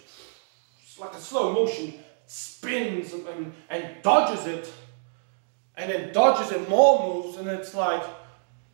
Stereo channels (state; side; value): silent; left; digital silence